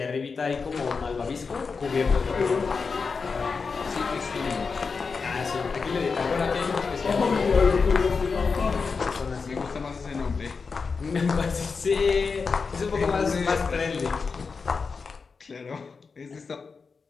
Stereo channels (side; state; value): right; quieter; 4.9 dB